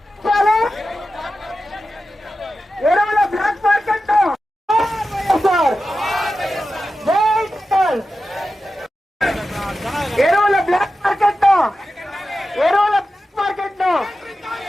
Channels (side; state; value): both; normal; correlation 0.92